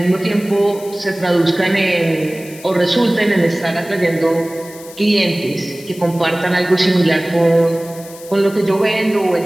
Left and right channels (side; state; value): left; noise; hiss, 19 dB below the sound